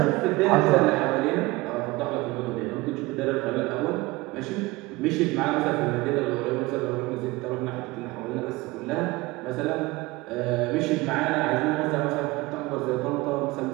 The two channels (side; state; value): left; quieter; 21.4 dB